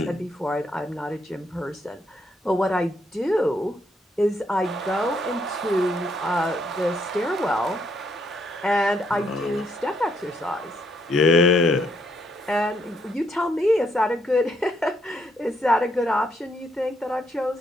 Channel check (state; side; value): normal; both; correlation 0.74